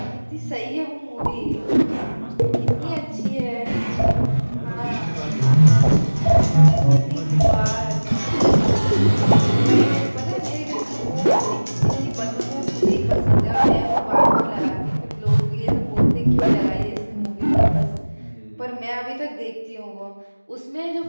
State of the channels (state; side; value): inverted; both; correlation -1.00